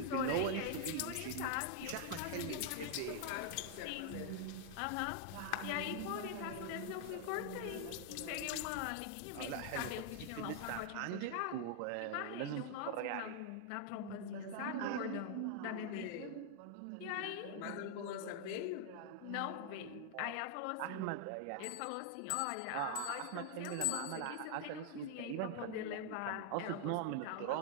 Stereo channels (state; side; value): different; both; correlation 0.00